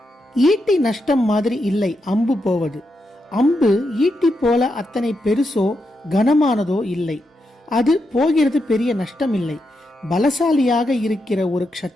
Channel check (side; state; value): both; normal; correlation 0.84